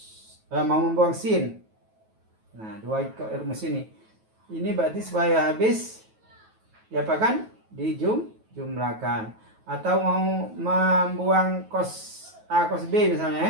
sin. Nah, 2 rumus ini. Ini berarti supaya habis diapakan? Dijumlahkan. Atau mau membuang cos A cos B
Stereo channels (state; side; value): late; left; 9.2 ms